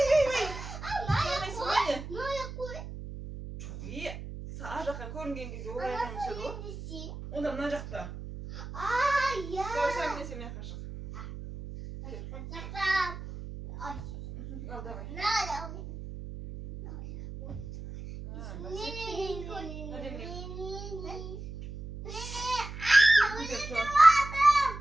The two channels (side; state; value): right; noise; hum, 10 dB below the sound